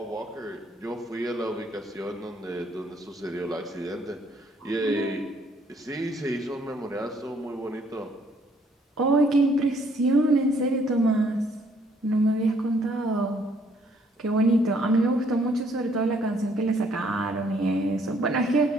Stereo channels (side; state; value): both; normal; correlation 0.65